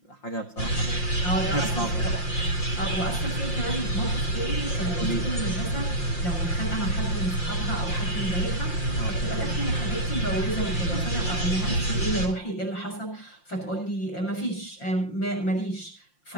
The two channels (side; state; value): right; late; 5.7 ms